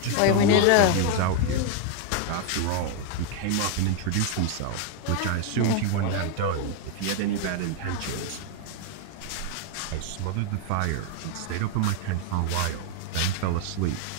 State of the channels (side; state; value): both; different; correlation 0.01